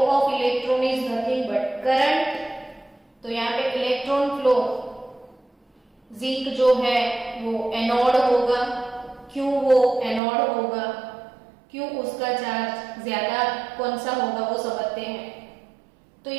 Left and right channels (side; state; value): left; drops out; at 10.2 s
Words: electron is nothing but current, तो यहाँ पे इलेक्ट्रॉन फ्लो, जिंक जो है वो एनोड होगा। क्यों वो एनोड होगा, क्यों उसका चार्ज ज्यादा कौन सा होगा वो समझते हैं। तो